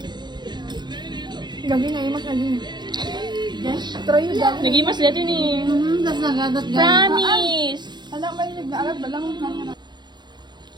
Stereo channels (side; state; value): left; late; 0.21 ms